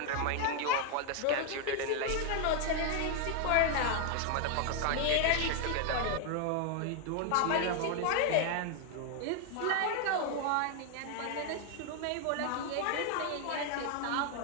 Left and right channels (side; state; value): both; different; correlation 0.01